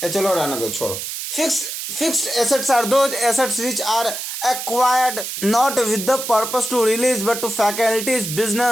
चलो रहने दो, छोड़ो। Fixed assets are those assets which are acquired not with the purpose to release but to facilitate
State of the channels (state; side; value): noise; right; hiss, 6 dB below the sound